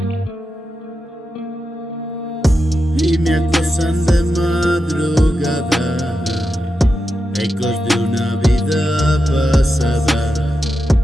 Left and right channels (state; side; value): normal; both; correlation 0.88